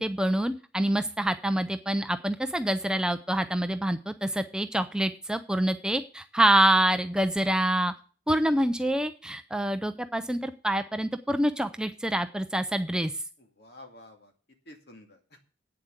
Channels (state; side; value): normal; both; correlation 0.87